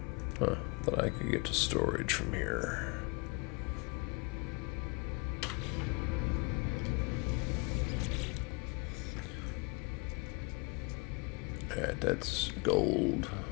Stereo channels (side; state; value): right; quieter; 30.1 dB